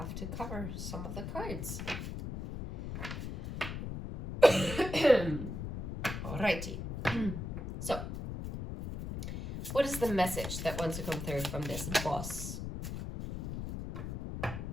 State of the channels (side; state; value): left; noise; rumble, 6 dB below the sound